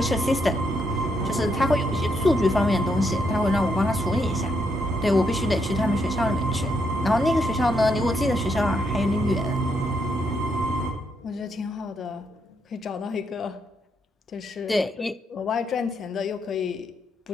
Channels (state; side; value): normal; both; correlation 0.77